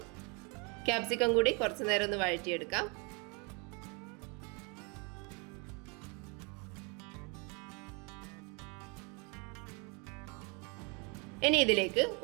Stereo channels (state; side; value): quieter; left; 32.1 dB